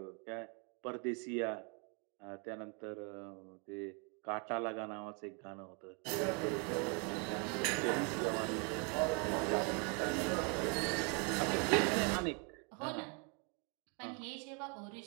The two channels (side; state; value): left; quieter; 34.2 dB